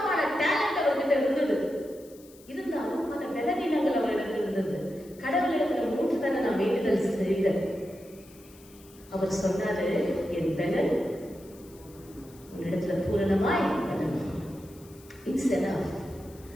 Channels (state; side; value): noise; left; hiss, 24 dB below the sound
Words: டேலண்ட் அவர்கிட்ட இருந்தது. இருந்தாலும் பல பலவீனங்கள் அவரிடத்தில் இருந்தது. கடவுளிடத்துல 3 தடவை நான் வேண்டுதல் செய்தேன். அவர் சொன்னாரு, என் பலன் உன்னிடத்துல பூரணமாய் இட்ஸ் எனஃப்.